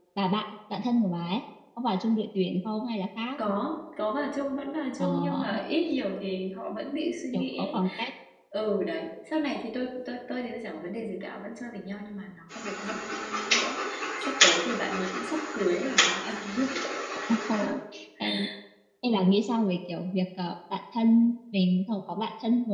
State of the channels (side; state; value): both; identical; correlation 1.00